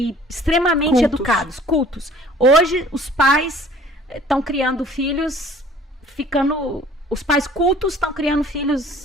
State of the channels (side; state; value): both; normal; correlation 0.52